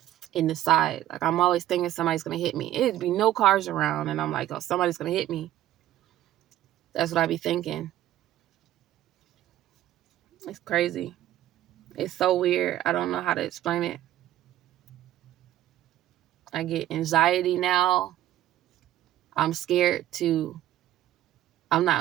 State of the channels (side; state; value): left; quieter; 13.2 dB